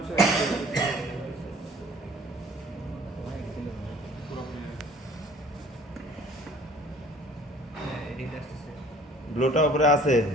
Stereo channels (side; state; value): both; normal; correlation 0.52